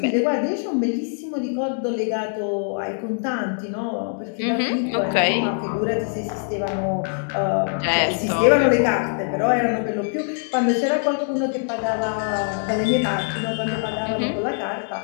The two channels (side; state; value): right; silent; 63 dB below the other